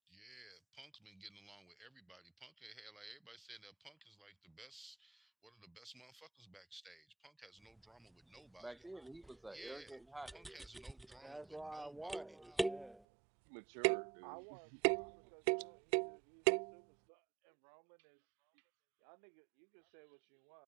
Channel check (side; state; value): left; drops out; at 13.0 s